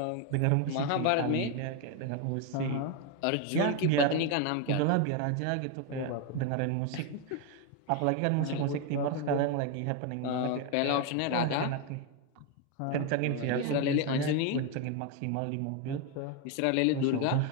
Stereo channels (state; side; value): different; both; correlation 0.02